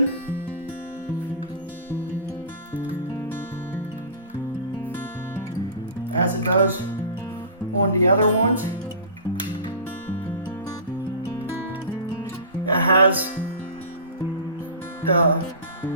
As it does on the other ones. It has the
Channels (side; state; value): both; inverted; correlation -0.35